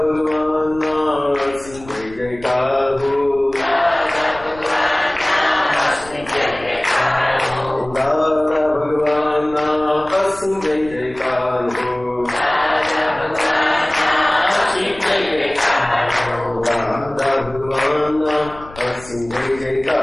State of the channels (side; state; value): left; noise; rumble, 20 dB below the sound